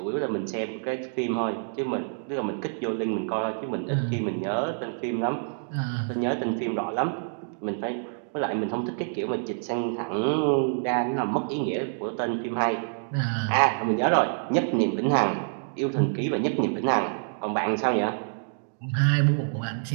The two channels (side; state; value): left; silent; digital silence